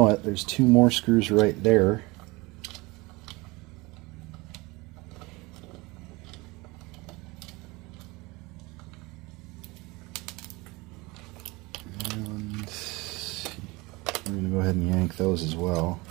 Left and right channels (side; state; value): left; quieter; 23.7 dB